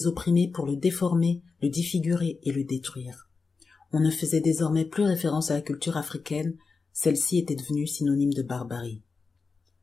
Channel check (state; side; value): quieter; right; 4.5 dB